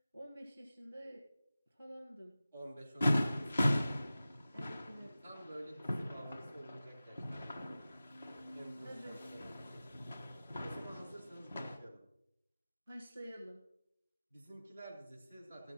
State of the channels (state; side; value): inverted; both; correlation -0.96